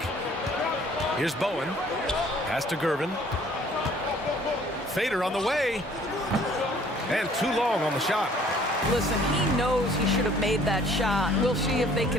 Here's Bowen. Pass to Gervin. fader on the way. And too long on the shot. Listen, he knows he should have made that shot. We'll see if they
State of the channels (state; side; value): normal; both; correlation 0.56